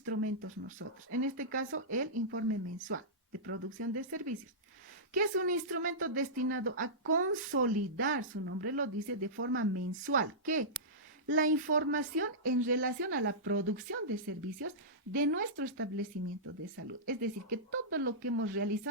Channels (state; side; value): normal; both; correlation -0.16